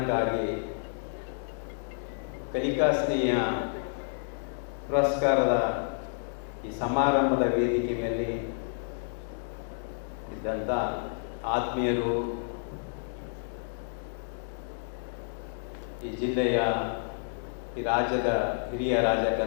ಕಲಿಕಾ ಸ್ನೇಹ ಪುರಸ್ಕಾರದ ಈ ಸಮಾರಂಭದ ವೇದಿಕೆ ಮೇಲೆ ಇದ್ದಂಥ ಆತ್ಮೀಯರು, ಈ ಜಿಲ್ಲೆಯ ಈ ರಾಜ್ಯದ ಹಿರಿಯ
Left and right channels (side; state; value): right; silent; digital silence